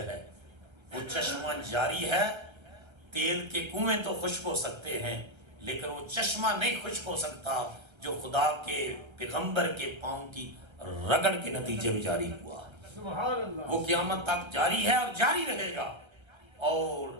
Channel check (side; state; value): left; late; 1.3 ms